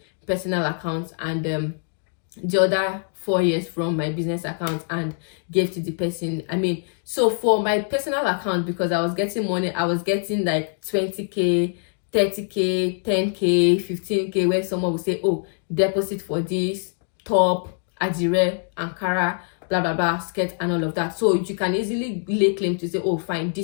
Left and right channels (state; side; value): silent; right; digital silence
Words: personal account and the other 4 years from my business account and gave to the person. I mean, so for my personal account, because I was getting money, I was getting like 20k, 30k, 10k, 15k, where someone would say, oh, deposit for this top, adire, ankara, blah blah blah, skirt, and all of that. So you can easily lay claim to say, oh fine,